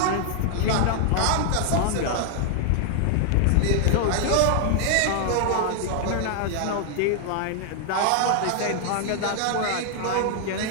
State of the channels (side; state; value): both; different; correlation 0.00